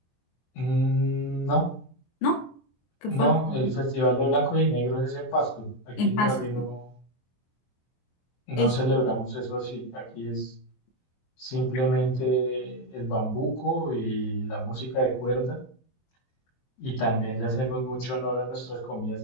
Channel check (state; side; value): late; right; 24 ms